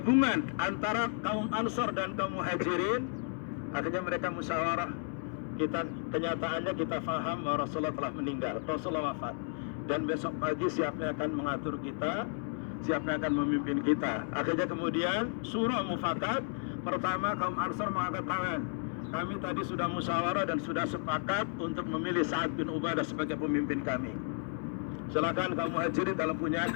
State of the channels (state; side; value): silent; right; 56 dB below the other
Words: antara kaum Ansar dan kaum Muhajirin, akhirnya mereka musyawarah. Kenyataannya kita faham bahwa Rasulullah telah meninggal, Rasulullah wafat. Dan besok pagi siapa yang akan mengatur kita? siapa yang akan memimpin kita. Akhirnya kemudian surah mufakat. Pertama kaum Ansar mengangkat tangan. Kami tadi sudah musyawarah dan sudah sepakat untuk memilih Sa'ad bin Ubadah sebagai pemimpin kami. Silakan kaum Muhajirin dalam punya